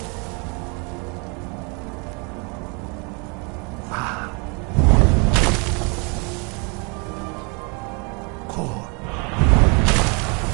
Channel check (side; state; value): left; quieter; 32.8 dB